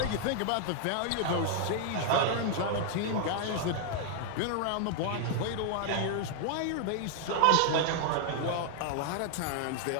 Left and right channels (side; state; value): both; different; correlation -0.01